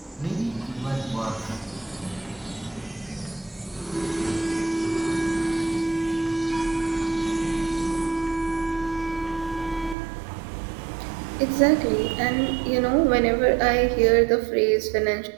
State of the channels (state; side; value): drops out; left; at 10.0 s